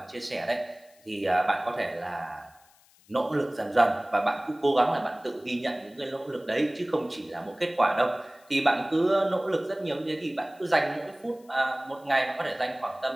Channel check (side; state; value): left; noise; hiss, 29 dB below the sound